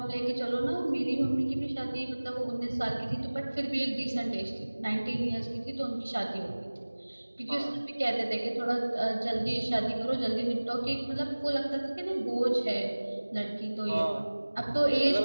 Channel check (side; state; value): both; inverted; correlation -1.00